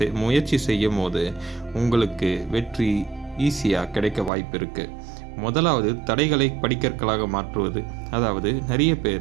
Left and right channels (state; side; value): drops out; left; at 4.3 s